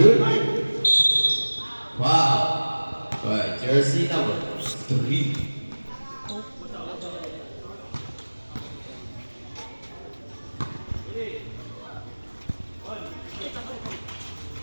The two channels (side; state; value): both; inverted; correlation -1.00